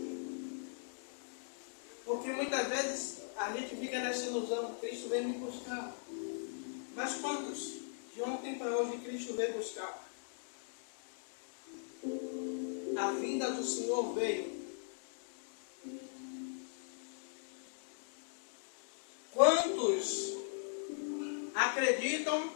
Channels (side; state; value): right; silent; digital silence